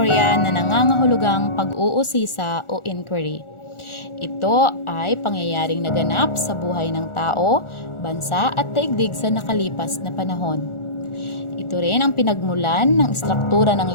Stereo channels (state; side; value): late; right; 1.4 ms